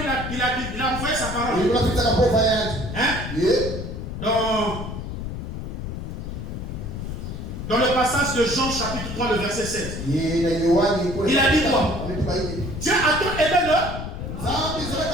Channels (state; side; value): noise; left; rumble, 6 dB below the sound